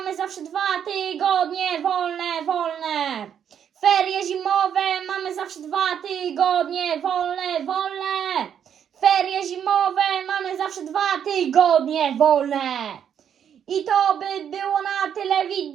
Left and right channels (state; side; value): quieter; left; 8.7 dB